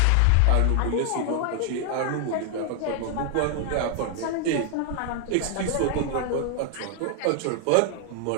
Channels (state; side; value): different; both; correlation 0.00